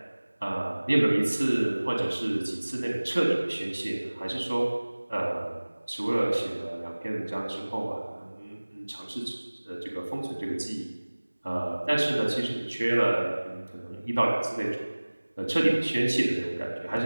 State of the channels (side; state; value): both; inverted; correlation -1.00